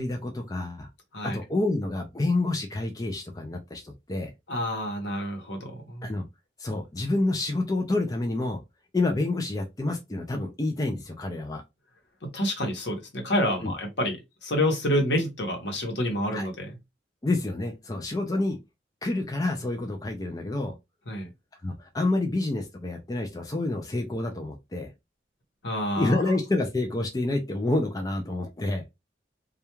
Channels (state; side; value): normal; both; correlation 0.69